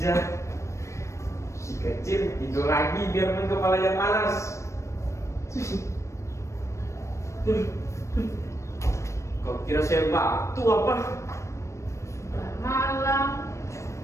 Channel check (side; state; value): right; late; 0.14 ms